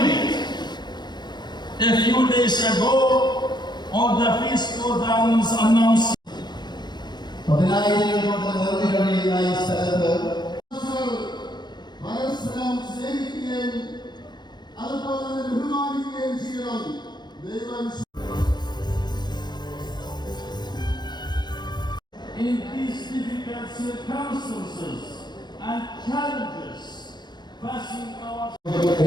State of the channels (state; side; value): late; right; 0.21 ms